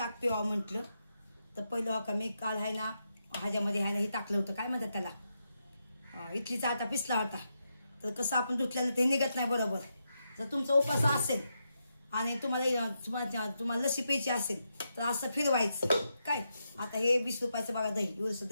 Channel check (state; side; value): inverted; both; correlation -0.84